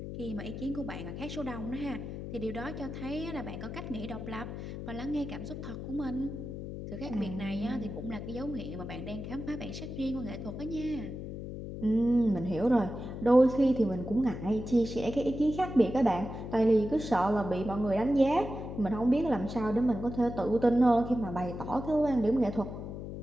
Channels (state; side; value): noise; left; hum, 8 dB below the sound